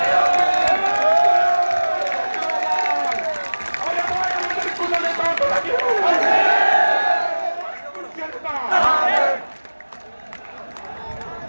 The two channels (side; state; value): both; inverted; correlation -1.00